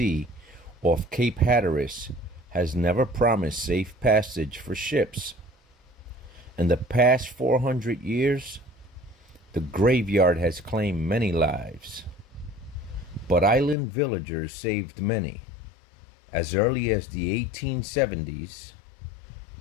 off Cape Hatteras, has never promised safe passage for ships. In the past 400 years, the graveyard has claimed many lives. But island villagers saved many. As early as the 1870s,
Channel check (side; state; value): right; drops out; at 13.8 s